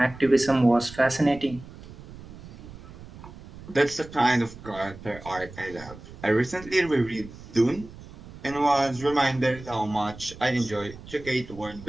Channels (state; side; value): noise; right; rumble, 16 dB below the sound